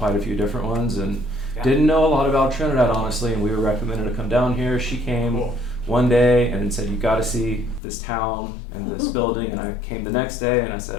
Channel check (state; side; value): drops out; right; at 7.8 s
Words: a few different ones and didn't know a lot about Trinidad, honestly, and we were recommended to come down here. She came one day and said, you got to see this town and this building, and I came the next day and I